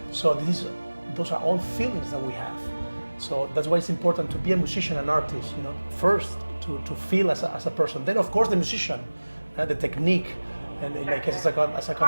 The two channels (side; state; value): both; inverted; correlation -1.00